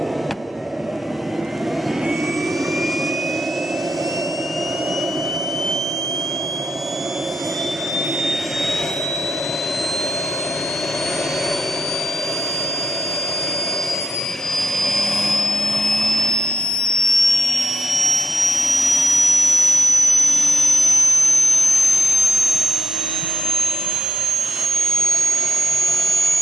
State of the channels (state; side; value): normal; both; correlation 0.85